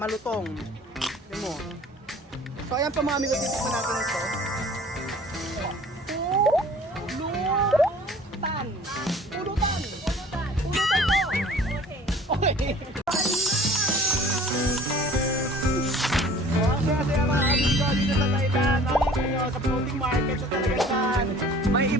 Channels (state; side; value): normal; both; correlation 0.49